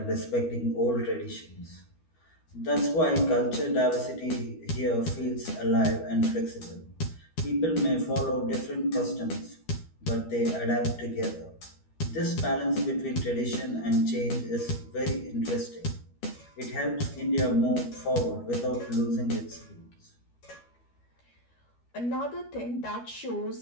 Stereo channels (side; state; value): right; late; 12 ms